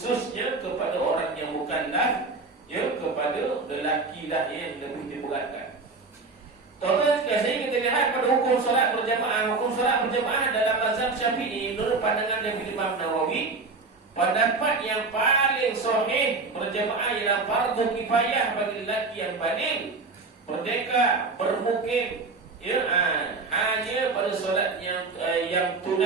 kepada orang yang mukallaf, kepada lelaki lah yang lebih diberatkan. Tuan-tuan sekalian, kita lihat pada hukum solat berjamaah. Hukum solat berjamaah dalam mazhab Syafi'i menurut pandangan dari Imam Nawawi, pendapat yang paling sahih berjamaah ialah fardu kifayah bagi lelaki yang baligh, merdeka, bermukim, ya, hanya pada solat yang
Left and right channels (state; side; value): quieter; left; 3.9 dB